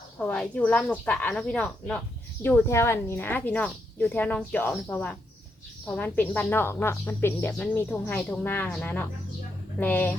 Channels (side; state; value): both; normal; correlation 0.80